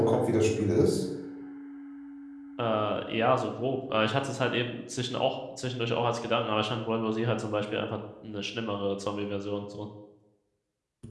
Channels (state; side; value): identical; both; correlation 1.00